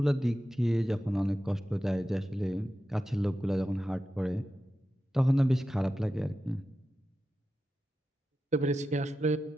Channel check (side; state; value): both; normal; correlation 0.91